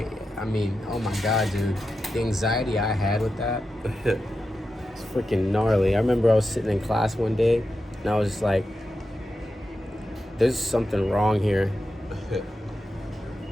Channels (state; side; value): normal; both; correlation 0.90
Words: I mean, oh my God, dude, the anxiety I had with that, it's freaking gnarly. I remember I was sitting in class one day, and I was just like, there's something wrong here.